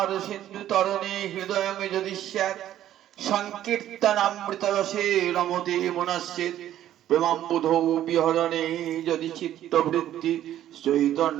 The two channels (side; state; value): left; quieter; 12.1 dB